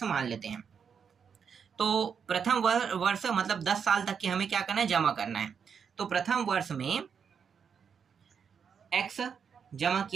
मान लेते हैं। तो प्रथम वर्ष मतलब 10 साल तक के हमें क्या करना है, जमा करना है। तो प्रथम वर्ष में x जमा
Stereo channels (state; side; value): quieter; left; 6.8 dB